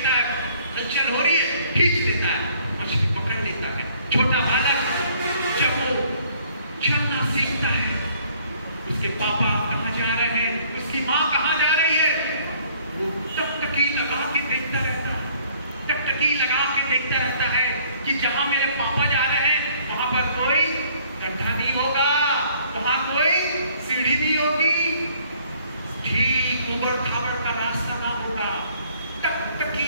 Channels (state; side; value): inverted; both; correlation -0.60